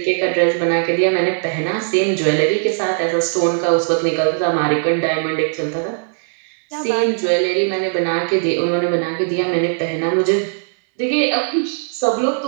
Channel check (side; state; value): left; silent; digital silence